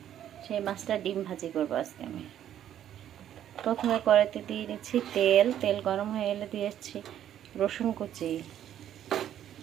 সেই মাছটা ডিম ভাজি করবো আজকে আমি। প্রথমে কড়াইতে দিয়ে নিচ্ছি তেল। তেল গরম হয়ে এলে দিয়েছি রসুন কুচি,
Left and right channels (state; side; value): quieter; left; 10.8 dB